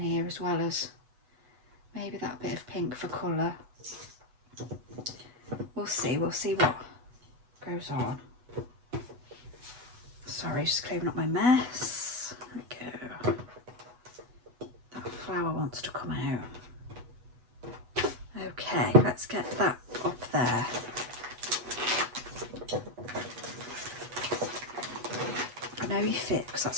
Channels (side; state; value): left; late; 8.1 ms